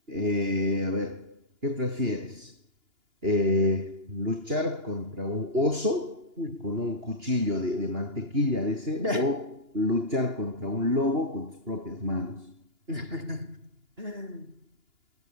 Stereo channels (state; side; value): late; left; 2.9 ms